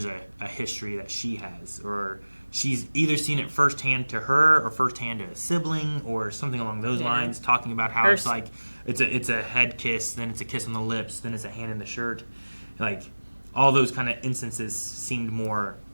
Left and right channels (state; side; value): inverted; both; correlation -1.00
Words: a history that she has, or she's either seen it firsthand to her or firsthand to a sibling or something along those lines, talking about how it's like it's a head kiss, then it's a kiss on the lips, then it's a hand in the shirt. Like all those kind of instances seemed more